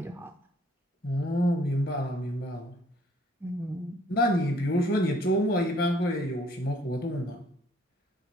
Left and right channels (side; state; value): both; normal; correlation 0.61